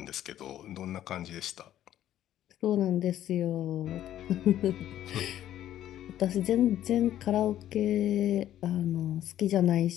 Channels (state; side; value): quieter; right; 12.1 dB